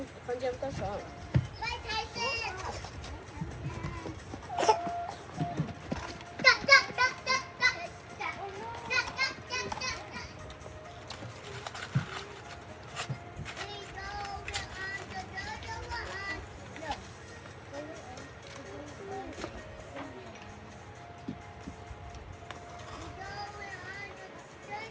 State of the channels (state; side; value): identical; both; correlation 1.00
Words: 房间不少。